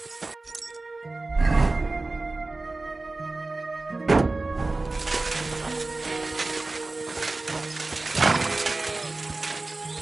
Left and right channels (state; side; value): quieter; left; 3.3 dB